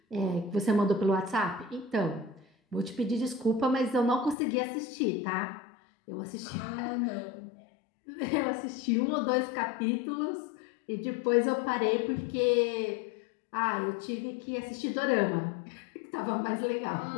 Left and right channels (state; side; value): drops out; right; at 4.4 s